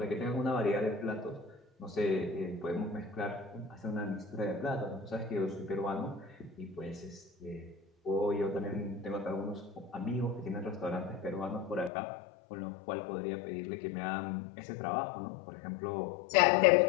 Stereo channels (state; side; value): drops out; right; at 11.9 s